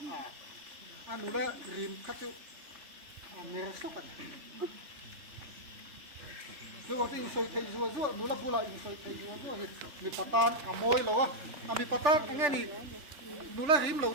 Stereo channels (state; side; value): late; left; 3.4 ms